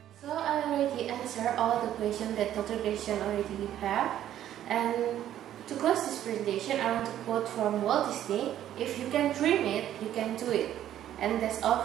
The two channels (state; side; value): quieter; left; 11.6 dB